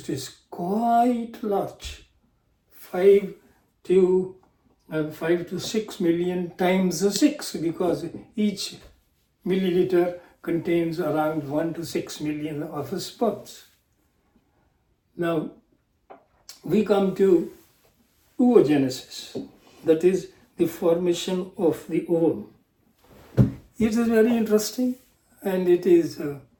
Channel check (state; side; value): identical; both; correlation 1.00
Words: is quite large, 5 to 6 million times 6, because each milliliter contains around 1 to 6 million of sperms. Now, we come to oogenesis, that is the formation of the ovum. It is very interesting, and it is